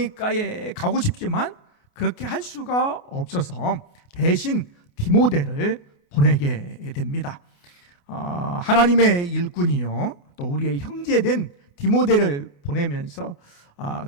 가고 싶지만 그렇게 할 수가 없어서 대신 디모데를 보내게 됩니다. 하나님의 일꾼이요 또 우리의 형제된 디모데를 보내면서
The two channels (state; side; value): late; right; 28 ms